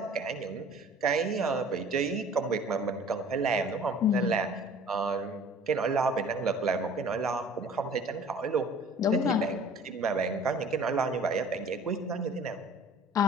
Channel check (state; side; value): normal; both; correlation 0.48